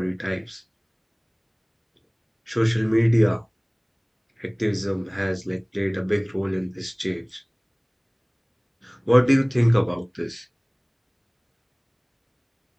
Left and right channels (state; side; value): identical; both; correlation 1.00